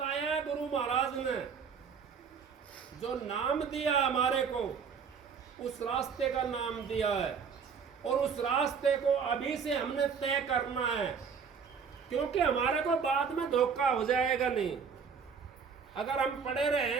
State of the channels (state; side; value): quieter; left; 6.3 dB